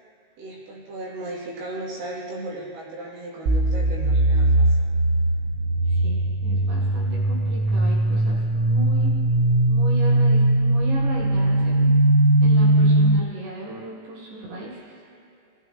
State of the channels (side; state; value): left; late; 19 ms